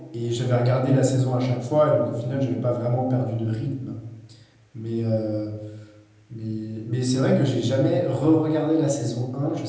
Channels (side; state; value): both; identical; correlation 1.00